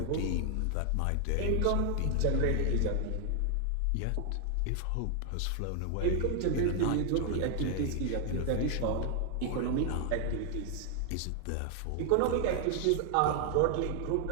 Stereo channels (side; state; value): both; different; correlation 0.00